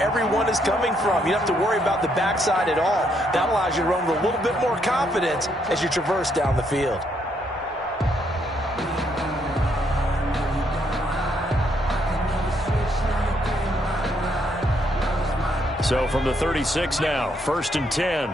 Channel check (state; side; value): normal; both; correlation 0.73